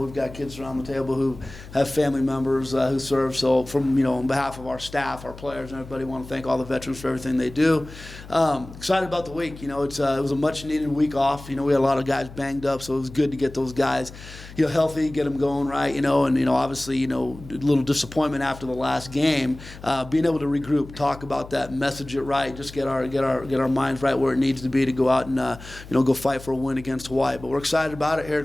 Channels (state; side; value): noise; left; hum, 16 dB below the sound